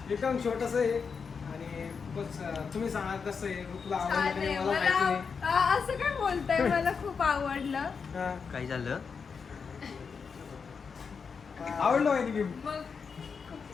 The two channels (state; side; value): quieter; right; 5.7 dB